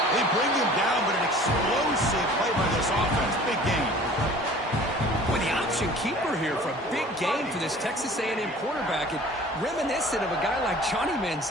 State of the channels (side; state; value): both; normal; correlation 0.47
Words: They bring him down, but an explosive play by this offense. Big game. With the option keeper here for a big game for this Texas A&M quarterback. And reminiscent of a guy like Johnny